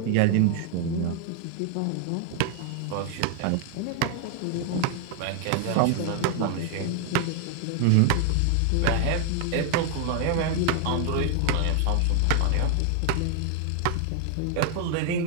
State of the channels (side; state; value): both; different; correlation 0.00